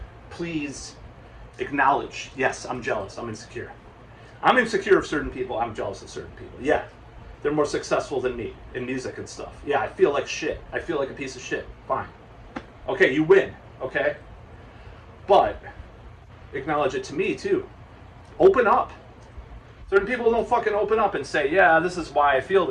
please acknowledge, yes, I'm jealous, I'm insecure. I'm insecure of certain people, I'm jealous of certain people. Yeah, they're more successful than me in music and stuff. Yeah, I feel like shit. I feel like a piece of shit. Fine. Okay, you win. Okay? But acknowledge it to me too. Open up. Certain people don't fucking open up and say, yeah, this is why I feel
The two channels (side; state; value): both; identical; correlation 1.00